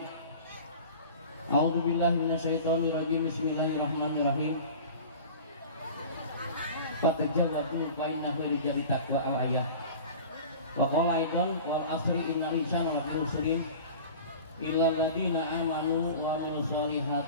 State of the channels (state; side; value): inverted; both; correlation -0.38